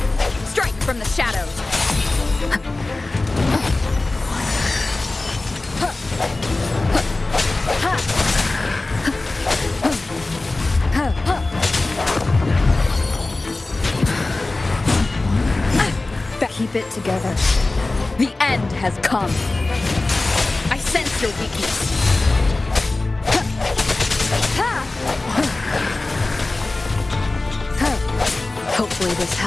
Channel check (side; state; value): right; quieter; 3.1 dB